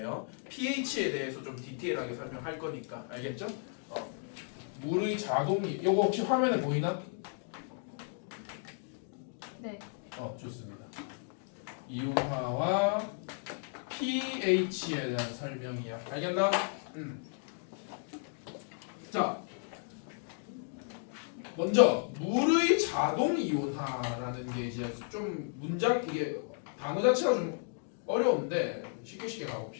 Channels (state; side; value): silent; right; 55 dB below the other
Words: pH에 대해서 좀 디테일하게 설명할 거니까. 알겠죠? 물의 자동이 이거 혹시 화면에 보이나? 네. 좋습니다. 이온화와 pH에 대한 설명이야. 알겠나? 자, 먼저 물의 자동 이온화라는 게 이제 좀 문장 이게 단어 자체가 좀 어려운데 쉽게